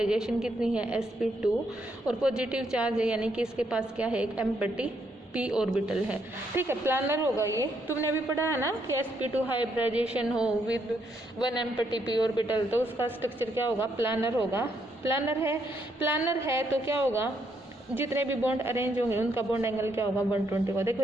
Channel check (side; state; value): both; normal; correlation 0.75